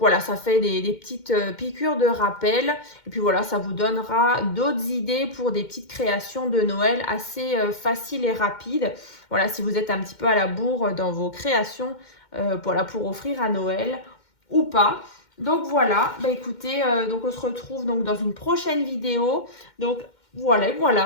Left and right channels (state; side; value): late; right; 2.1 ms